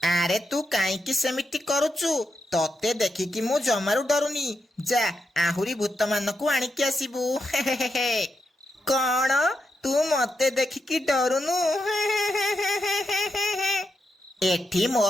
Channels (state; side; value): normal; both; correlation 0.85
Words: ଆରେ ତୁ କାହିଁକି ସେମିତି କରୁଛୁ? ତତେ ଦେଖିକି ମୁଁ ଜମାରୁ ଡରୁନି। ଯା, ଆହୁରି ଭୂତମାନଙ୍କୁ ଆଣିକି ଆସିବୁ। କଣ? ତୁ ମତେ ଦେଖିକି ଡରୁନୁ? ଏଠି ମୋ